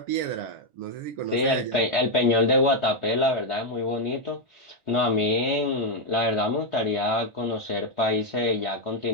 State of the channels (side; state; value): left; late; 1.4 ms